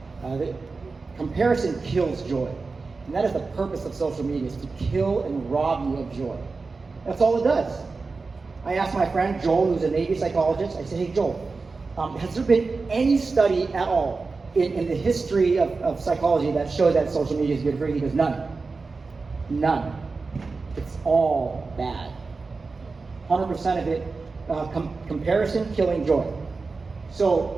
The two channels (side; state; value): left; quieter; 4.1 dB